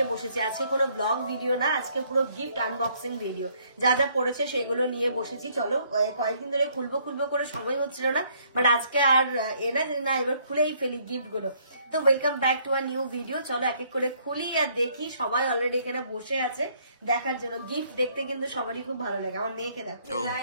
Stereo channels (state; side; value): inverted; both; correlation -0.66